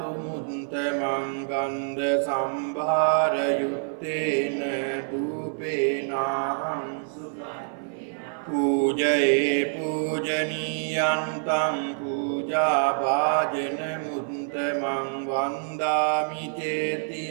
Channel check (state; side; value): silent; left; 56 dB below the other